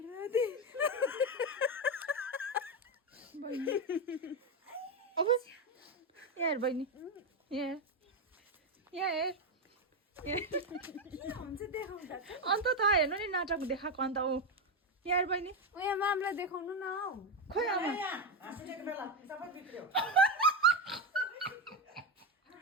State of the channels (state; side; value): normal; both; correlation 0.10